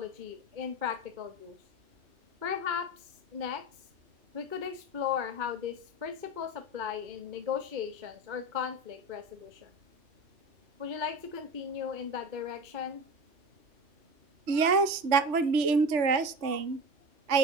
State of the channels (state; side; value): late; left; 3.4 ms